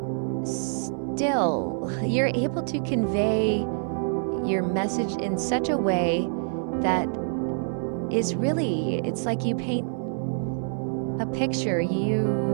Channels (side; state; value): left; silent; 61 dB below the other